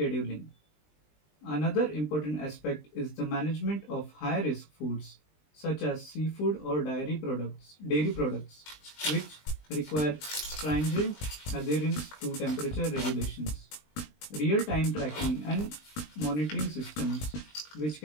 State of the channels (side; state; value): right; late; 20 ms